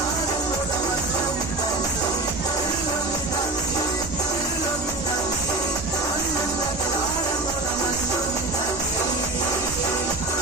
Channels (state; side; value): quieter; left; 3.1 dB